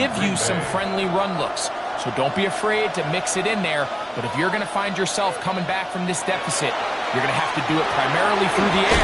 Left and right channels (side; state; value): both; identical; correlation 1.00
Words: you some friendly run looks. So don't be afraid to mix it in there. But if you're going to find yourself coming back from this deficit, you're going to have to do it primarily through the